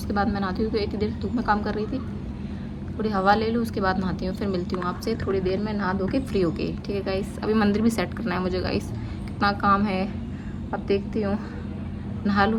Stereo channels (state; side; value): identical; both; correlation 1.00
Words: बाद मैं नहाती हूँ, क्योंकि इतनी देर धूप में काम कर रही थी। थोड़ी हवा ले लूँ, उसके बाद नहाती हूँ, फिर मिलती हूँ आपसे थोड़ी देर में नहा धो के फ्री होके। ठीक है गाइस, अभी मंदिर भी सेट करना है मुझे गाइस, कितना काम है, अब देखती हूँ, नहा लूँ